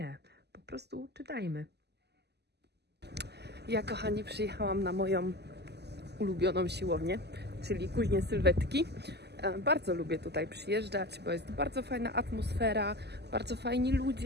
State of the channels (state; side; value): late; left; 0.49 ms